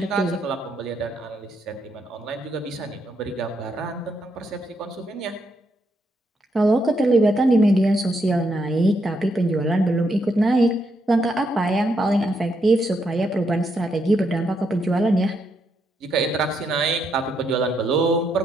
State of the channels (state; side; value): normal; both; correlation 0.78